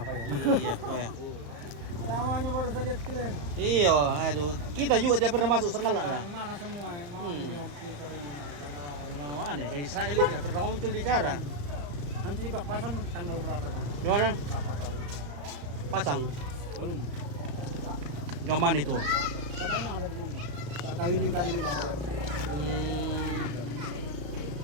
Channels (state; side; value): late; left; 35 ms